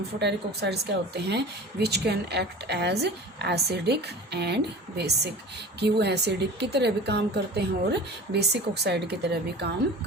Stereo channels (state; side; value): normal; both; correlation 0.38